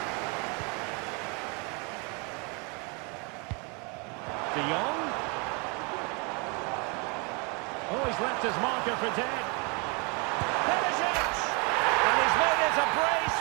De Jong. Oh, he's left his marker for dead. Perisic! And he's made it a brace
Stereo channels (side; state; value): left; quieter; 32.5 dB